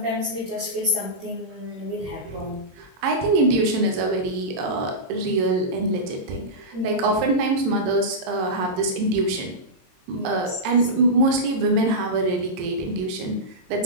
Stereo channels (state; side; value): late; left; 22 ms